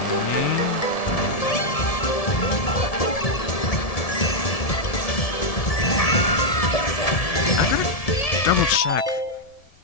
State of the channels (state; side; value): late; right; 1.7 ms